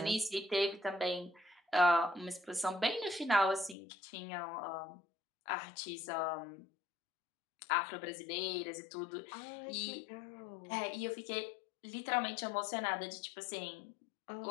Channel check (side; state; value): right; drops out; at 3.8 s